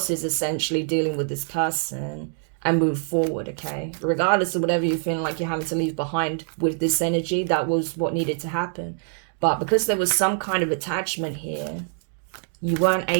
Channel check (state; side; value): silent; left; 62 dB below the other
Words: essentially dealing with this person and move forward, okay? Regardless of whatever you're feeling like you're having to leave behind with this energy, that was what needed to happen. But because there was some kind of attachment here, you weren't